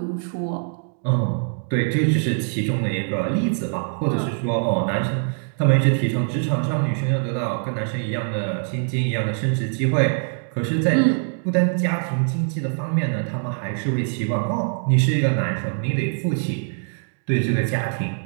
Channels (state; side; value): silent; left; 63 dB below the other